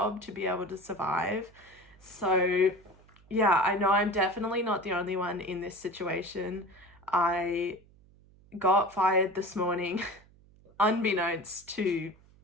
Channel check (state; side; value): noise; right; hum, 27 dB below the sound